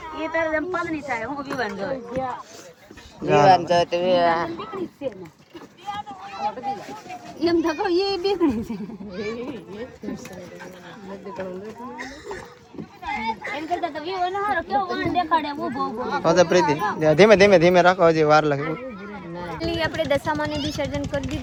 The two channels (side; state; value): both; identical; correlation 1.00